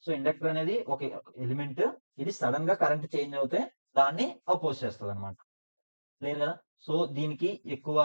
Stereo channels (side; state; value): both; inverted; correlation -1.00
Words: సో ఇండక్టర్ అనేది ఒక ఎలిమెంట్, ఇది సడన్ గా కరెంట్ చేంజ్ అవుతే దాన్ని అపోజ్ చేస్తుంది అనమాట. క్లియర్ కదా. సో